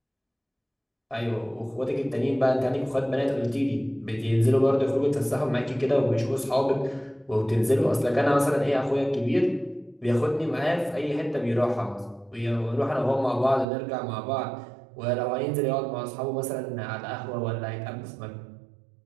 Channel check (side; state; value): left; drops out; at 13.7 s